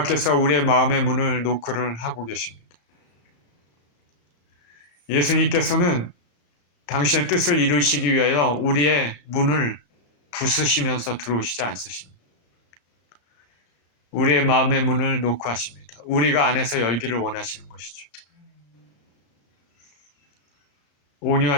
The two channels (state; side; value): late; right; 35 ms